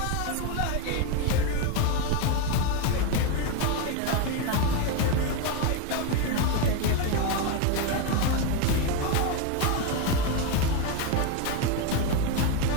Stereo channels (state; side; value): different; both; correlation 0.03